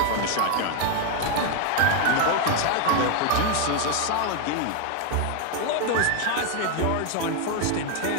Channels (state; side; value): different; both; correlation 0.01